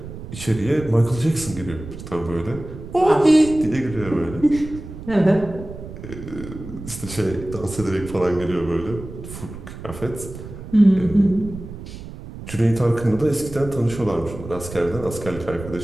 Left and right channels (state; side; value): noise; right; rumble, 12 dB below the sound